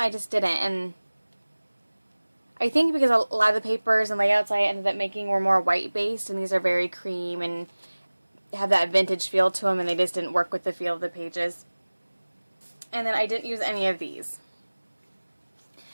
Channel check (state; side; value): inverted; both; correlation -1.00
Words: just didn't. And I think because a lot of the papers and layouts I ended up making were more white based, and these are very cream and have that vintage feel to them, and they just didn't work with the feel of the pages. And then I didn't use any of these.